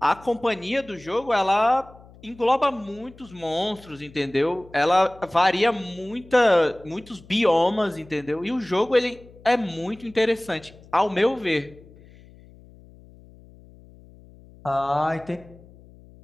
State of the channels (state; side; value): noise; left; hum, 23 dB below the sound